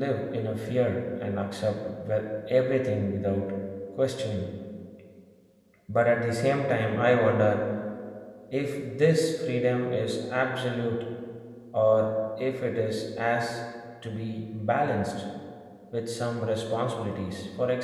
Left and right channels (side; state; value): both; identical; correlation 1.00